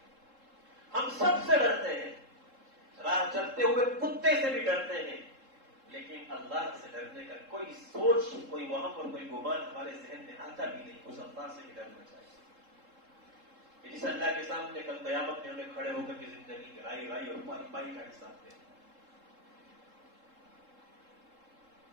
ہم سب سے ڈرتے ہیں، راہ چلتے ہوئے کتے سے بھی ڈرتے ہیں، لیکن اللہ سے ڈرنے کا کوئی سوچ، کوئی وہم اور کوئی گمان ہمارے ذہن میں آتا بھی نہیں۔ اس اللہ سے بھی ڈرنا چاہیے، جس اللہ کے سامنے کل قیامت میں ہمیں کھڑے ہو کر کے زندگی کی رائی رائی اور پائی پائی کا حساب دیں۔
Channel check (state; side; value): late; left; 3.7 ms